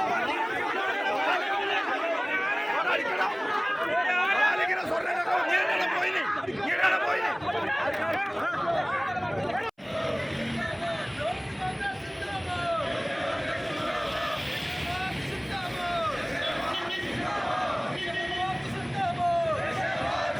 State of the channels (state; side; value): identical; both; correlation 1.00